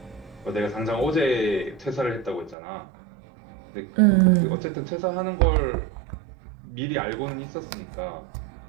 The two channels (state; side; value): drops out; left; at 2.6 s